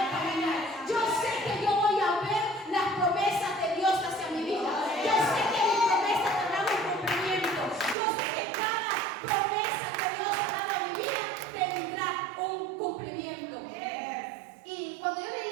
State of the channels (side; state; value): left; drops out; at 8.0 s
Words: caminar, yo sé que yo voy a ver las promesas de Dios hacia mi vida, yo sé que mis promesas tendrán un cumplimiento, yo sé que cada promesa que Dios ha dado a mi vida tendrá un cumplimiento. Y cuando yo